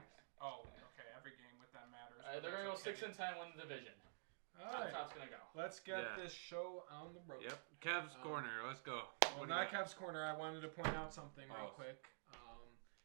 Oh, okay. Every game with that matters. They're gonna go 6-10, win the division. All Top right, top's gonna go. let's get Yeah. this show on the road. Yep. Cavs corner. Let's go. Well, What do not you got? Kev's corner. I wanted to point out something real Oh. quick.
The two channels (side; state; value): left; silent; digital silence